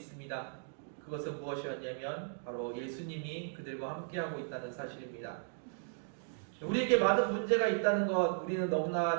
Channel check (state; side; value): silent; left; digital silence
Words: 그것은 무엇이었냐면 바로 예수님이 그들과 함께하고 있다는 사실입니다. 우리에게 많은 문제가 있다는 것 우리는